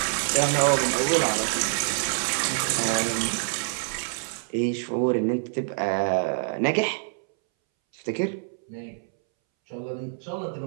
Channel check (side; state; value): left; silent; 61 dB below the other